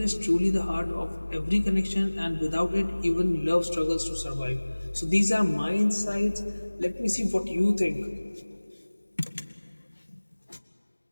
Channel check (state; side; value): inverted; both; correlation -1.00